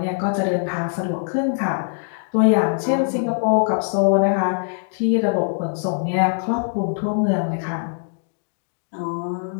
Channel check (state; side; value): silent; right; digital silence